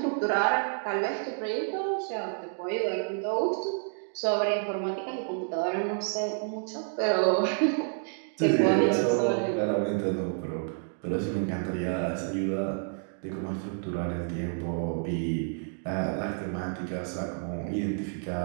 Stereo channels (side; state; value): left; silent; 58 dB below the other